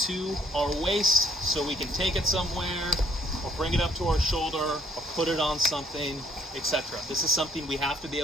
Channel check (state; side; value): normal; both; correlation 0.65